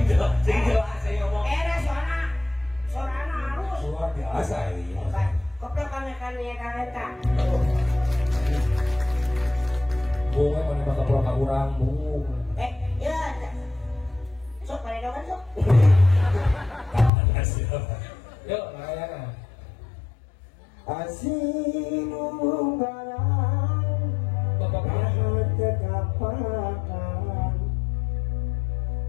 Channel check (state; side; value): drops out; right; at 17.1 s